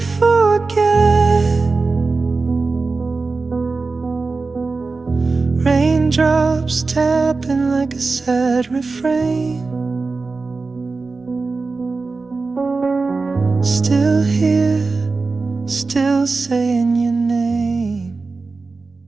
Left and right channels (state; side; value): quieter; left; 4.0 dB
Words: forget. Raindrops tapping like a sad refrain, still here, still saying your name.